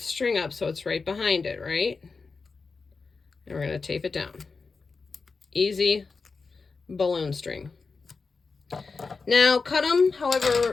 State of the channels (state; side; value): quieter; right; 4.5 dB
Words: string up so it's right behind it, right? And we're going to tape it down. Easy balloon string. Now, cut them